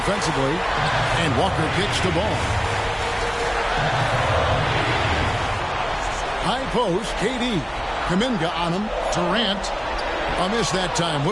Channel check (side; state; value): both; identical; correlation 1.00